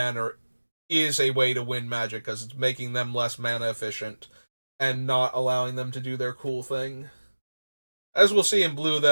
is a way to win Magic, because it's making them less mana efficient and not allowing them to do their cool thing. As we'll see in blue,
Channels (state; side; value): inverted; both; correlation -1.00